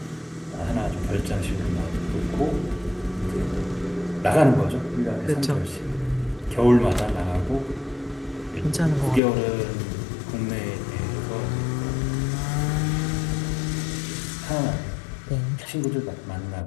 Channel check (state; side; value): drops out; right; at 9.2 s